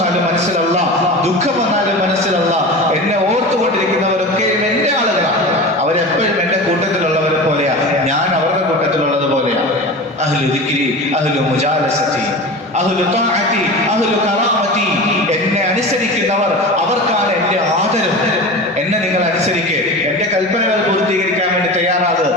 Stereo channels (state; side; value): normal; both; correlation 0.31